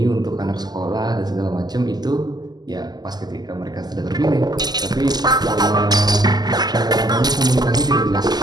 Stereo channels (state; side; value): late; left; 0.20 ms